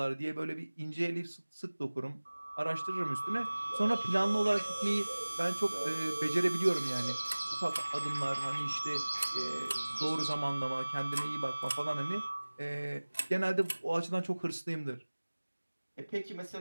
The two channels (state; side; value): inverted; both; correlation -1.00